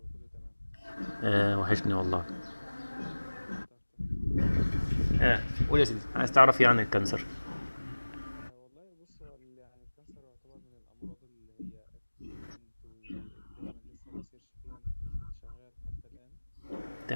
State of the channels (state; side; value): inverted; both; correlation -1.00